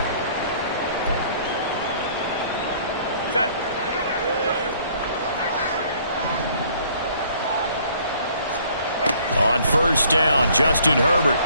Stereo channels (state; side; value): inverted; both; correlation -0.59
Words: On first down, Justin Herbert